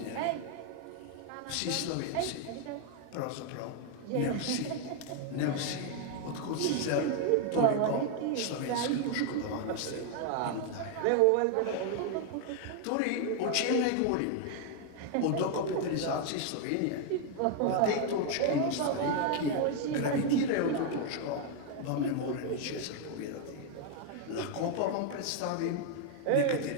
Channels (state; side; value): different; both; correlation 0.00